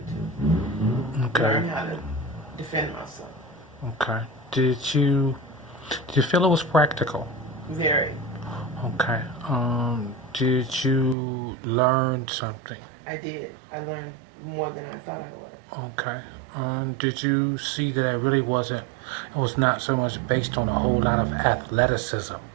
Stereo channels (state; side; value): drops out; left; at 11.2 s